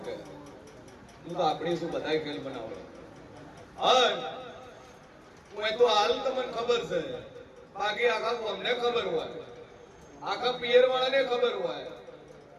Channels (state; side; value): identical; both; correlation 1.00